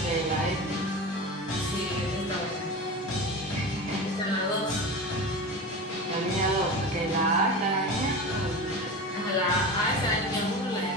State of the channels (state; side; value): normal; both; correlation 0.28